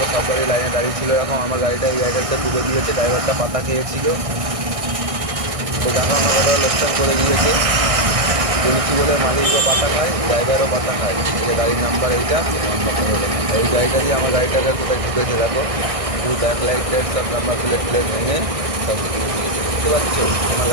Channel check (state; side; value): late; left; 1.6 ms